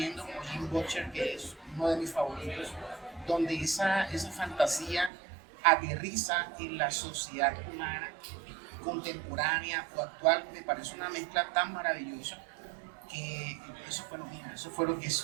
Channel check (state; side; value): drops out; left; at 5.1 s